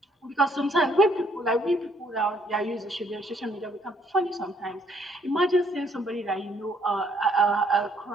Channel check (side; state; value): both; normal; correlation 0.66